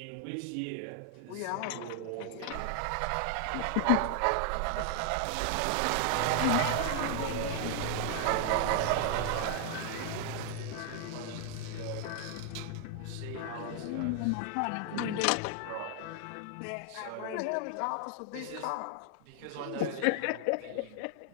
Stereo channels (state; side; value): different; both; correlation 0.00